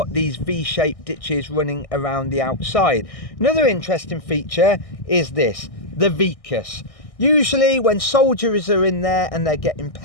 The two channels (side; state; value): right; late; 1.6 ms